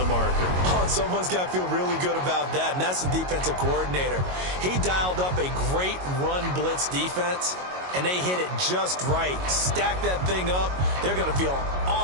marker. Oh, and someone's got to feel really good about that, and that's the defensive coordinator. He dialed up a great run blitz defense, and they hit it just right. Stack that thing up. They're going to feel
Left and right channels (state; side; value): late; left; 22 ms